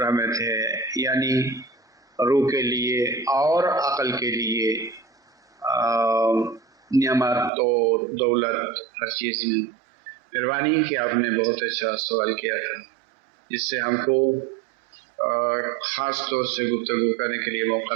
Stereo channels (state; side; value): drops out; left; at 7.5 s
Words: ہے. یعنی روح کے لیے اور عقل کے لیے نعمت اور دولت ہر چیز میں. مہربانی کہ آپ نے بہت اچھا سوال کیا تھا، جس سے ہم کو خاص طور سے گفتگو کرنے کے لیے موقع